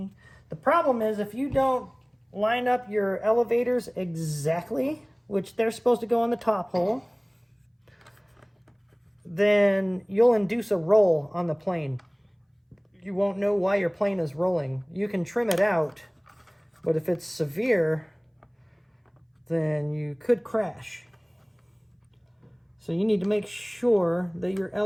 The problem is if you don't line up your elevators exactly, which they're supposed to go on the top hole, then you'll induce a roll on the plane. You won't know why your plane is rolling. You can trim it out, but if it's severe, then you could crash. So you need to make sure that your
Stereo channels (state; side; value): identical; both; correlation 1.00